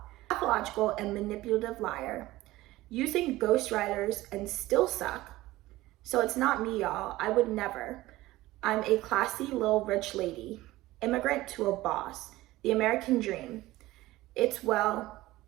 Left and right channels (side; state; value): left; quieter; 17.7 dB